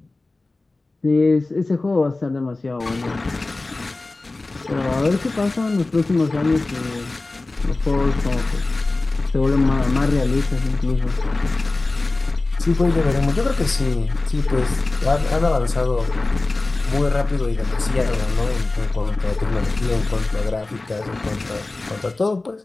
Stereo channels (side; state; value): right; quieter; 3.2 dB